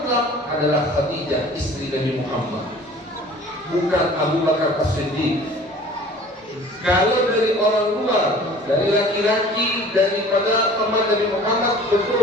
adalah Khadijah, istri Nabi Muhammad, bukan Abu Bakar As-Siddiq. Kalau dari orang luar, dari laki-laki, daripada teman Nabi Muhammad,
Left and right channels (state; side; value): normal; both; correlation 0.47